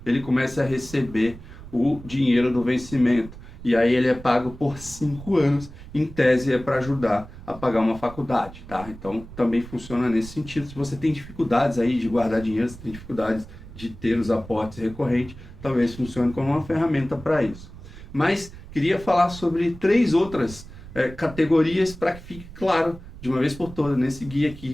ele comece a receber o dinheiro do vencimento. E aí ele é pago por 5 anos, em tese é para ajudar a pagar uma faculdade, tá? Então também funciona nesse sentido. Se você tem dificuldades aí de guardar dinheiro, se tem dificuldades de ter os aportes recorrentes, talvez funcione como uma ferramenta para isso. Mas queria falar sobre 3 outras categorias para que fique claro de uma vez por todas nesse guia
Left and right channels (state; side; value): noise; right; rumble, 16 dB below the sound